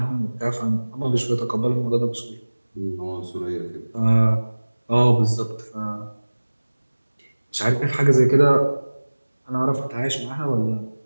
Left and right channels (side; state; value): both; inverted; correlation -1.00